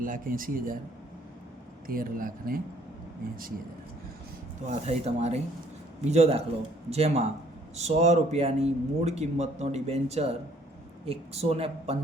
13,80,000. તો આ થઈ તમારી બીજો દાખલો, જેમાં 100 રૂપિયાની મૂળ કિંમતનો ડિબેન્ચર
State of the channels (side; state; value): both; normal; correlation 0.61